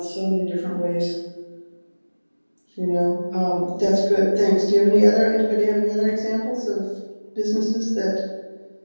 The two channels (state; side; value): inverted; both; correlation -1.00